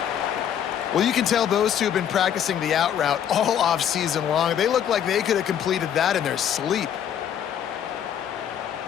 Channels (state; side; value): quieter; right; 9.3 dB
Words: Well, you can tell those two have been practicing the out route all off season long. They look like they could have completed that in their sleep.